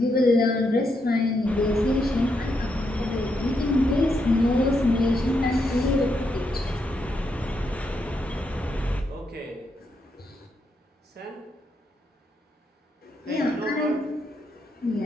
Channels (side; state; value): both; normal; correlation 0.80